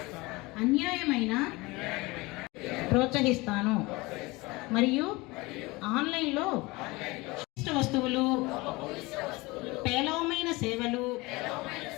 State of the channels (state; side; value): quieter; right; 22.9 dB